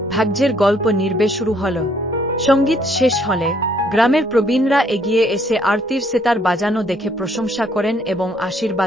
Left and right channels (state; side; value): normal; both; correlation 0.66